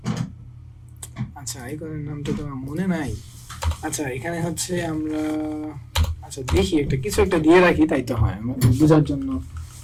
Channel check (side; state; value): both; identical; correlation 1.00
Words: আচ্ছা আইকনের নামটা তো আমার মনে নাই। আচ্ছা এখানে হচ্ছে আমরা, আচ্ছা দেখি একটা কিছু একটা দিয়ে রাখি, তাই তো হয় বোঝার জন্য।